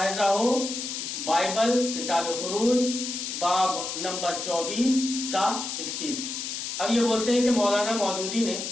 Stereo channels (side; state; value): left; noise; hiss, 5 dB below the sound